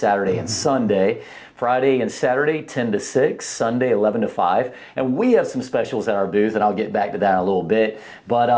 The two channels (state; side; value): identical; both; correlation 1.00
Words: and Sunday. Friday and Saturday, 10 to 6, Sunday, 11 to 5. And we have some specials at our booth, and I'll get back to that in a little bit.